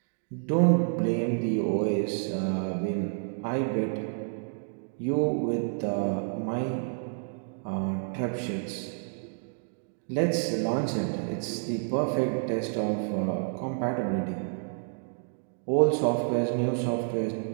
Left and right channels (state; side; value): silent; left; 58 dB below the other